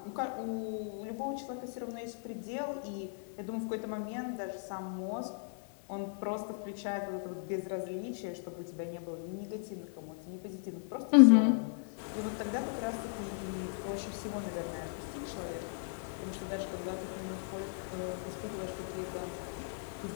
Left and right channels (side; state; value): right; silent; digital silence